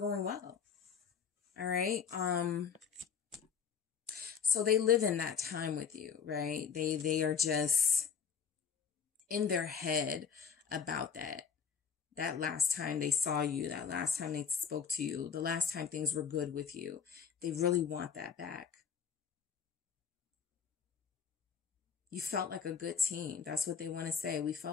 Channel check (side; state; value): right; quieter; 6.9 dB